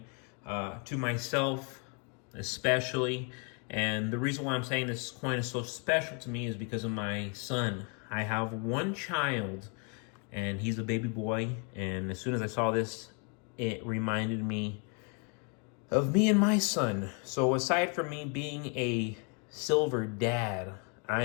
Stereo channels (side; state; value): right; quieter; 36.6 dB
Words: to myself especially. And the reason why I'm saying this coin is so special to me is because of my son. I have one child, and he's a baby boy. And as soon as I saw this, it reminded me of me and my son. So aside from me being a silver dad, I